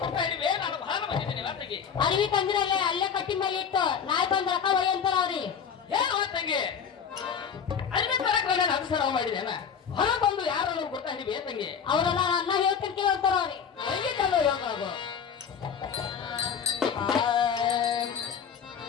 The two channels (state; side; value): quieter; right; 7.1 dB